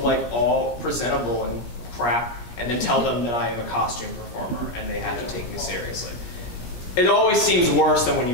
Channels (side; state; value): right; late; 17 ms